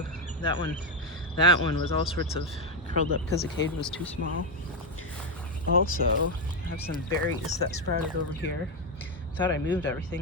That one was all sorts of curled up because the cage was too small. Also, I have some berries that sprouted over here. Thought I moved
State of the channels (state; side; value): normal; both; correlation 0.07